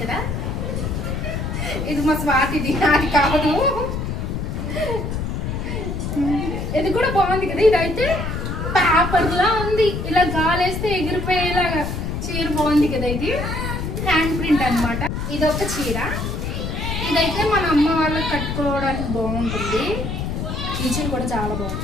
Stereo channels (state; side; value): noise; left; rumble, 3 dB below the sound